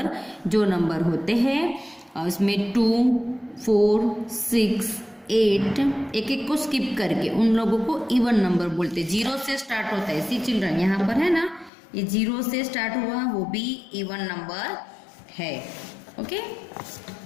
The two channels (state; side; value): drops out; right; at 11.7 s